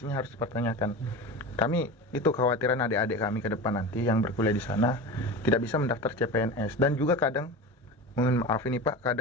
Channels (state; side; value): normal; both; correlation 0.29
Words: harus dipertanyakan. Kami itu kekhawatiran adik-adik kami ke depan nanti yang berkuliah di sana tidak bisa mendaftar CPNS, dan juga kadang, mohon maaf ini Pak,